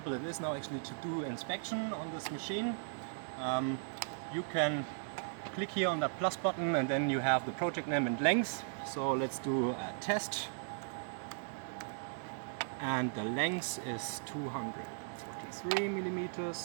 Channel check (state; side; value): silent; left; digital silence